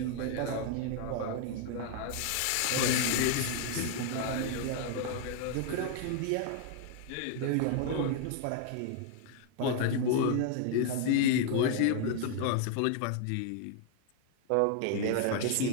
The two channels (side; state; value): both; different; correlation 0.00